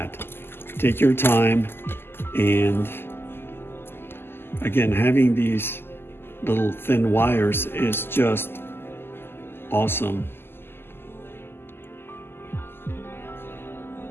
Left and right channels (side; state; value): right; late; 0.11 ms